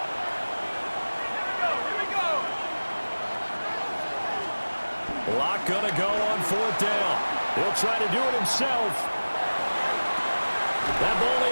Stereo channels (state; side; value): inverted; both; correlation -1.00